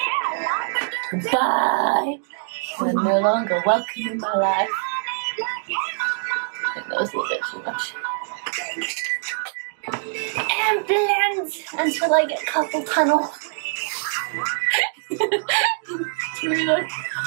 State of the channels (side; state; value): left; silent; digital silence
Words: Goodbye. You're no longer welcome in my life. I think that was a little bit too much. And blend until I get carpal tunnel. Really?